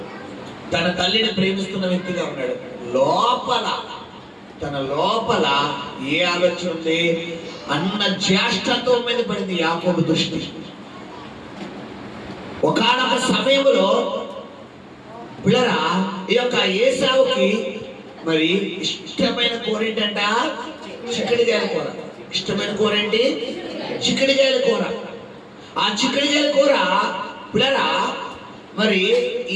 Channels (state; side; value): identical; both; correlation 1.00